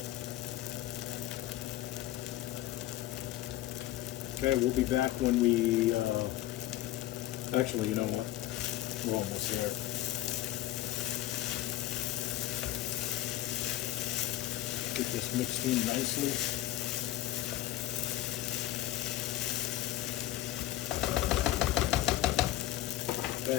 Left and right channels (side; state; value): right; quieter; 14.7 dB